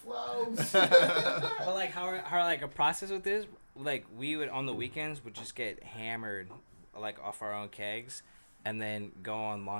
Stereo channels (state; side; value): inverted; both; correlation -1.00